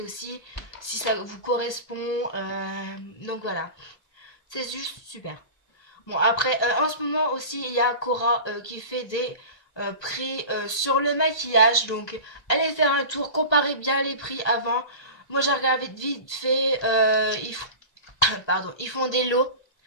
aussi, si ça vous correspond, donc voilà, c'est juste super. Bon après, en ce moment aussi il y a Cora qui fait des prix sur le maquillage, donc allez faire un tour, comparez bien les prix avant. Moi j'ai regardé vite fait, pardon, ils font des lots.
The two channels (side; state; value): right; late; 1.2 ms